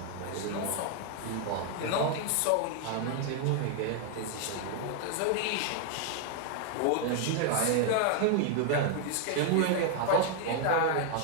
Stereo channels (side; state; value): both; different; correlation 0.00